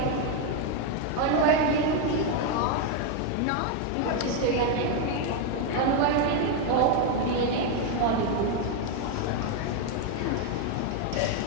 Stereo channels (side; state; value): both; different; correlation 0.01